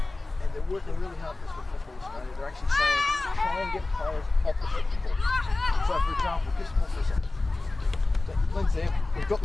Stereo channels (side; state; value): right; quieter; 3.1 dB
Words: and they're working really hard this with Football Australia, they're actually saying try and get players opposite the ball. So for example, just more for a second. So, Lindsay, we've got